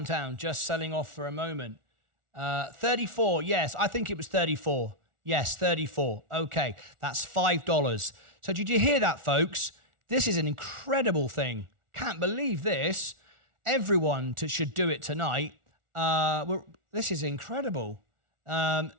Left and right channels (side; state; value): left; late; 1.4 ms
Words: just selling off for a moment. 34. Yes, I think it was 34. Yes, 34. Okay, that's $5. So did you hear that, folks? This is an incredible thing. Can't believe this. Everyone should do it tonight. This is incredible.